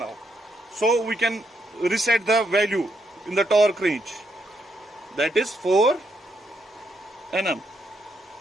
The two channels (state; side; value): normal; both; correlation 0.77